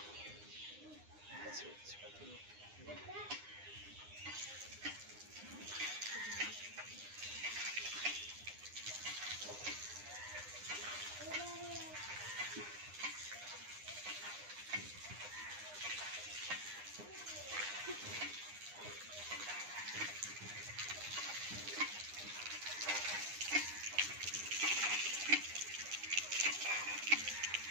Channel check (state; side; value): late; left; 9.8 ms